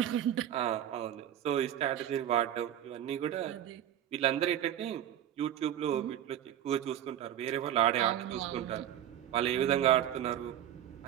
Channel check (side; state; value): left; quieter; 10.9 dB